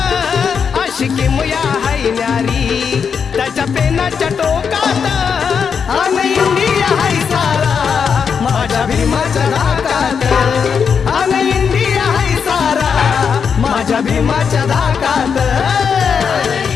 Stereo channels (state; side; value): quieter; right; 6.5 dB